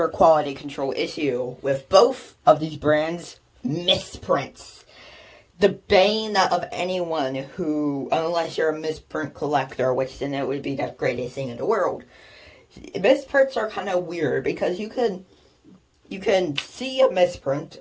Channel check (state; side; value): identical; both; correlation 1.00